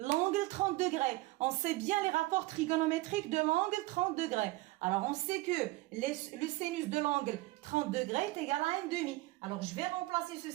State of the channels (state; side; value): quieter; left; 19.9 dB